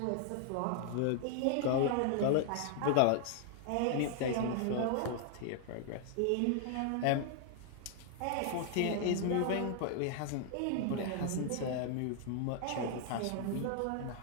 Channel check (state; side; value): different; both; correlation 0.00